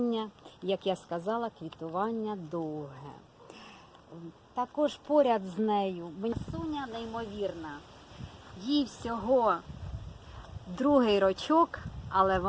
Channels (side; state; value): both; identical; correlation 1.00